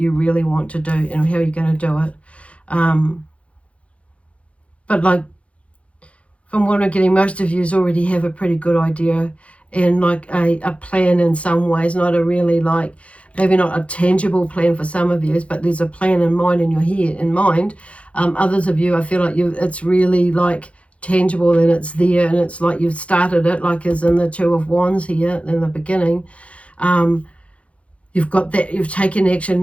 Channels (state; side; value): late; right; 0.063 ms